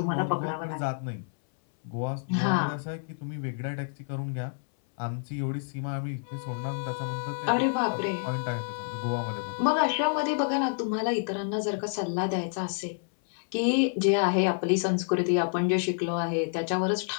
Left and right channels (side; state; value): right; silent; 59 dB below the other